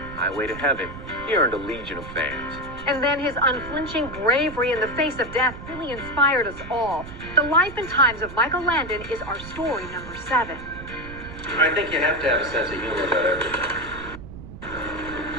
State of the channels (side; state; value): right; noise; rumble, 12 dB below the sound